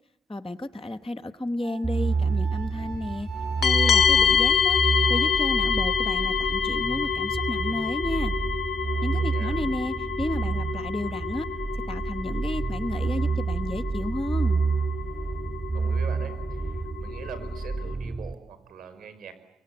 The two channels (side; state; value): both; normal; correlation 0.76